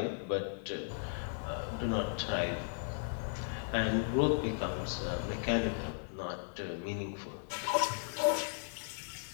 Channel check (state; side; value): silent; right; digital silence